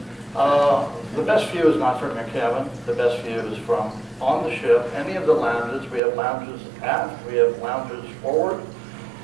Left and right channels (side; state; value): left; drops out; at 6.0 s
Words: The best view is not from your cabin. The best view is from on the ship, any of the lounges. We have lounges aft. We have lounges forward.